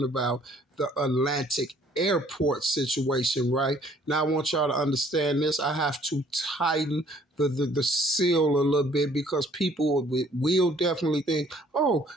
about the Atlantic airport situation, right? Now I want y'all to understand this. I have to tighten the seal a little bit, because people will definitely think, oh,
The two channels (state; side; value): normal; both; correlation 0.59